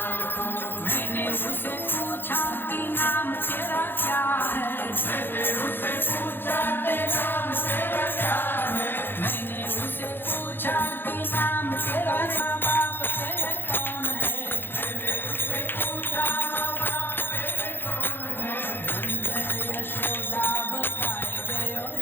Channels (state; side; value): late; right; 0.10 ms